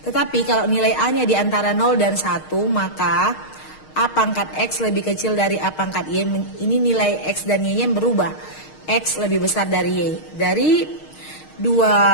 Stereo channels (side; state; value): right; late; 6.5 ms